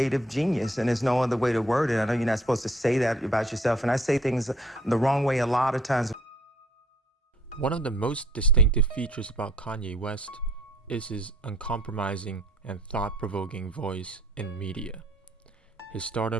genius, and there's no other way to word it. I know you're not supposed to say that about yourself, and I say things the wrong way a lot of times. One of the most distinctive features about Kanye West is his uncompromising and thought-provoking voice in media. His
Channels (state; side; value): normal; both; correlation 0.59